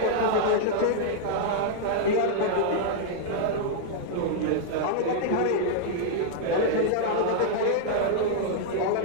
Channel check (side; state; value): both; different; correlation -0.01